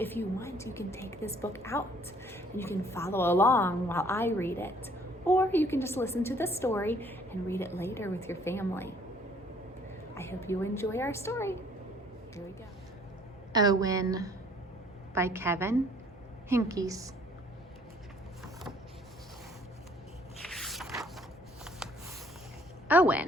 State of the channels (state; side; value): normal; both; correlation 0.59